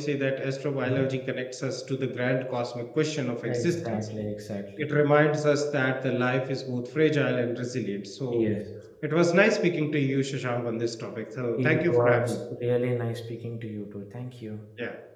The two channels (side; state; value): both; identical; correlation 1.00